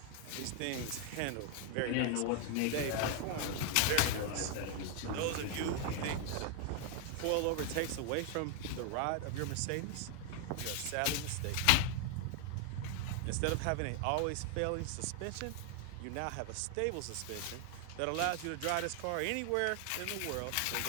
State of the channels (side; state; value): both; different; correlation 0.00